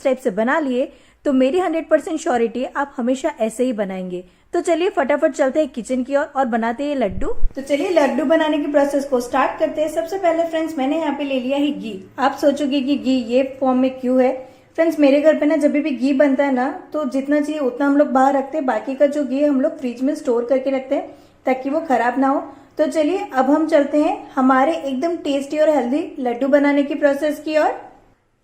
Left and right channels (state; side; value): identical; both; correlation 1.00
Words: टाइप से बना लिए तो मेरी 100% श्योरिटी आप हमेशा ऐसे ही बनाएंगे। तो चलिए फटाफट चलते हैं किचन की ओर और बनाते हैं लड्डू। तो चलिए लड्डू बनाने की प्रोसेस को स्टार्ट करते हैं। सबसे पहले फ्रेंड्स मैंने यहाँ पे ले लिया है घी। आप सोचोगे कि घी ये फॉर्म में क्यों है। फ्रेंड्स मेरे घर पे ना जब भी घी बनता है ना तो जितना चाहिए उतना हम लोग बाहर रखते हैं, बाकी का जो घी हम लोग फ्रिज में स्टोर करके रखते हैं ताकि वो खराब ना हो। तो चलिए अब हम चलते हैं हमारे एकदम टेस्टी और हेल्दी लड्डू बनाने की प्रोसेस की ओर।